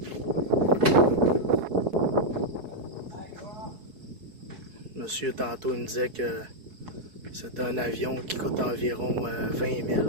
Monsieur, tantôt, il me disait que c'est un avion qui coûte environ 20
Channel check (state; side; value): late; left; 4.7 ms